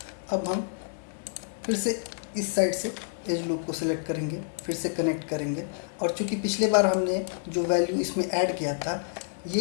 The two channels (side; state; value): right; silent; digital silence